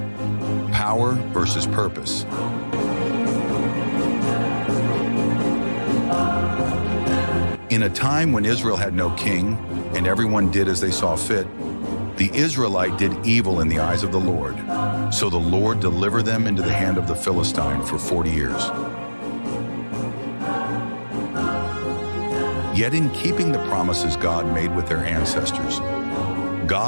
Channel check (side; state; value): both; inverted; correlation -1.00